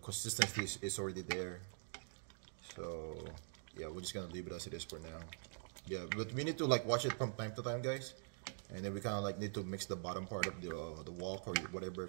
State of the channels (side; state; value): left; silent; digital silence